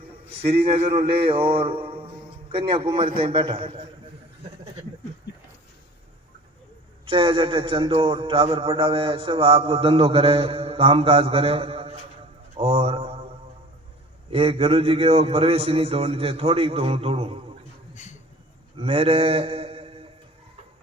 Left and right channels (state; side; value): normal; both; correlation 0.43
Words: श्रीनगर ले और कन्याकुमारी तक बैठा है। चाहे जटे चंदो टावर पढ़ावे, सब आपको धंधो करे, काम काज करे। और एक गुरु जी के वो प्रवेश ही नहीं तोड़नी चाहिए, थोड़ी तो हूँ तोड़ू। मेरे